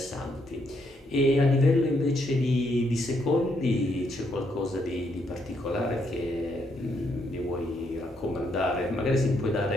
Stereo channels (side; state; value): both; normal; correlation 0.75